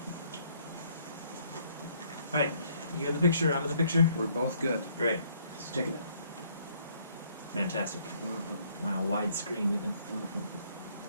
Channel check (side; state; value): both; inverted; correlation -0.65